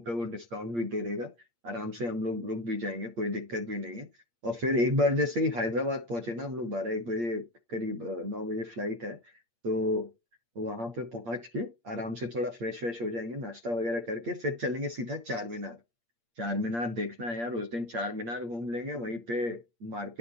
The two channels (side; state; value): left; late; 8.6 ms